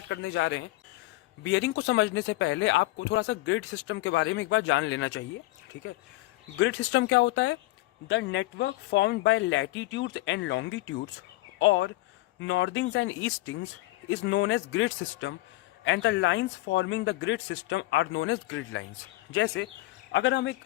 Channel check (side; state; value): right; quieter; 18.8 dB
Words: करने जा रहे हैं। बियरिंग को समझने से पहले आपको थोड़ा सा ग्रिड सिस्टम के बारे में एक बार जान लेना चाहिए। ठीक है, ग्रिड सिस्टम क्या होता है? The network formed by latitudes and longitudes और northings and eastings is known as grid system and the lines forming the grid system are known as grid lines. जैसे अगर हम एक